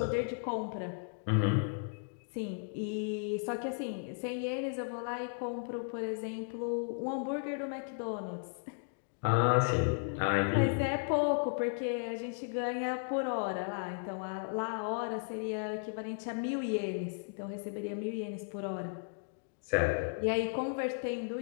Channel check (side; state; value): right; silent; digital silence